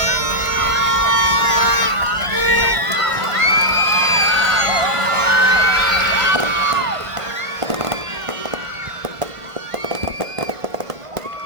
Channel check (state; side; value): late; left; 1.5 ms